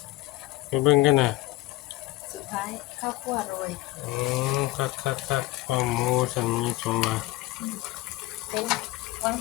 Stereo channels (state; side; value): quieter; right; 18.3 dB